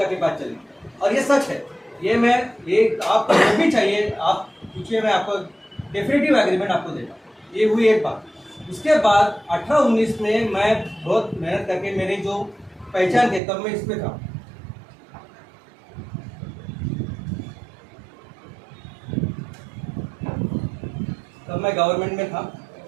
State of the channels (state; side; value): drops out; left; at 13.4 s